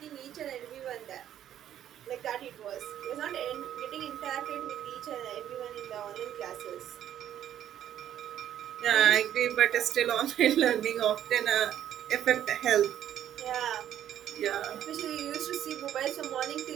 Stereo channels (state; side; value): quieter; left; 10.9 dB